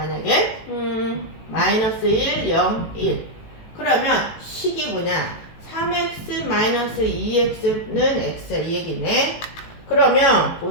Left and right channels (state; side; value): late; right; 18 ms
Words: 마이너스 1, 0, 1 그러면 식이 뭐냐 3x 마이너스 2x는 x야 이 얘기네. 그러면